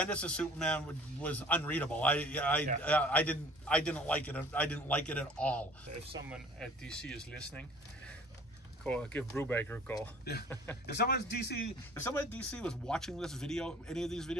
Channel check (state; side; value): normal; both; correlation 0.49